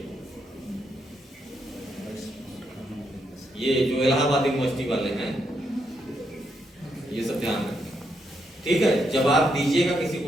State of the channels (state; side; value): normal; both; correlation 0.79